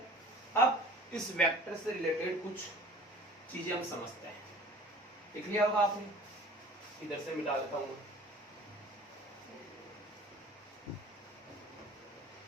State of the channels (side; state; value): both; normal; correlation 0.45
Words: अब इस वेक्टर से रिलेटेड कुछ चीजें हम समझते हैं। देख लिया होगा आपने, इधर से मिटा देता हूं।